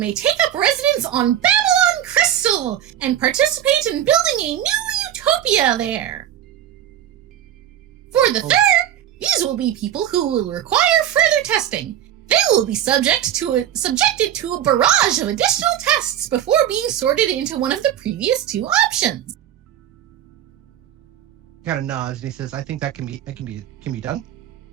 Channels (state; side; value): quieter; left; 11.0 dB